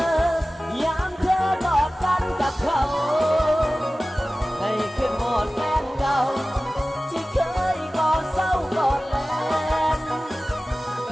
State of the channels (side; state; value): both; normal; correlation 0.97